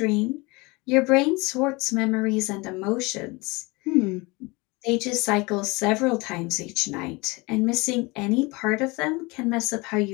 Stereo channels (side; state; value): right; quieter; 25.3 dB